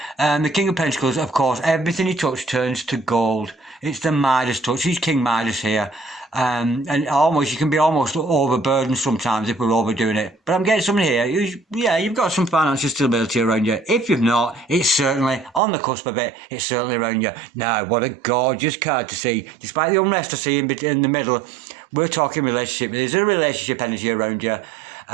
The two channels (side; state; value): left; drops out; at 15.6 s